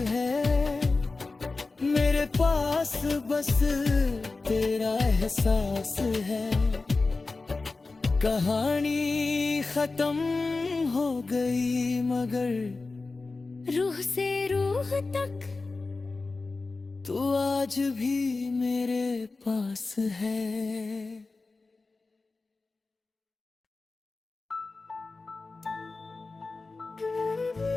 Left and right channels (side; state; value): right; quieter; 3.7 dB